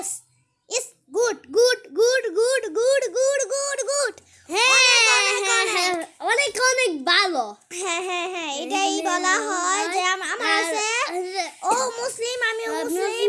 is good good good good good good good good. হ্যাঁ, অনেক অনেক ভালো। হ্যাঁ হ্যাঁ হ্যাঁ, এটাই বলা হয় যে আমার আছে ও মুসলিম, আমিও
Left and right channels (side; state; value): both; identical; correlation 1.00